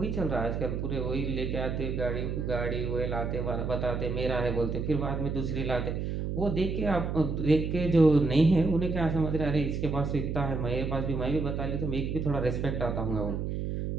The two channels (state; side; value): noise; right; hum, 2 dB below the sound